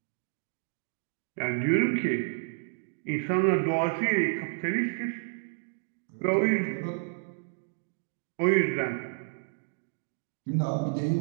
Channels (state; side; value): silent; left; digital silence